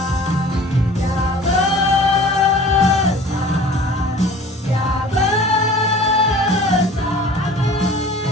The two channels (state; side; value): normal; both; correlation 0.45